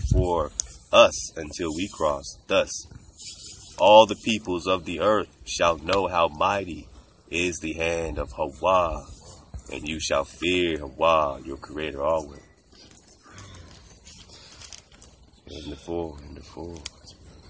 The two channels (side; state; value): both; identical; correlation 1.00